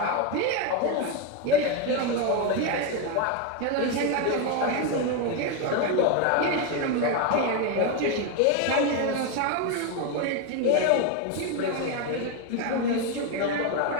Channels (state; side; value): different; both; correlation 0.02